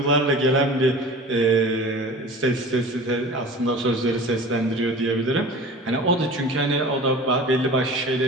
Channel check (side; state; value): both; normal; correlation 0.38